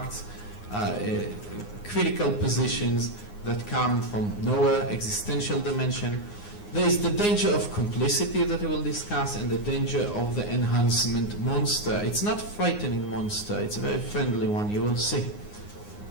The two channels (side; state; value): right; late; 9.7 ms